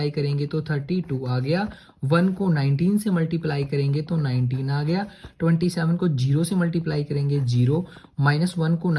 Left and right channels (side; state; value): both; identical; correlation 1.00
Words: करेंगे तो 32 आ गया, 1 को 19 से मल्टीप्लाई करेंगे तो 19 आ गया, 27 को 0 से मल्टीप्लाई करेंगे 0, -1 को